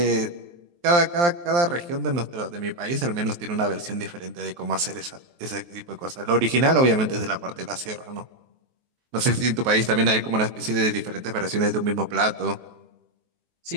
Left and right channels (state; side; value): late; left; 23 ms